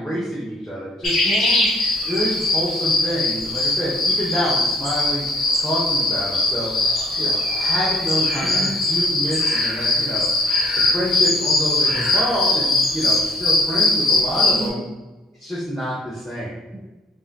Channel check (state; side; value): normal; both; correlation 0.61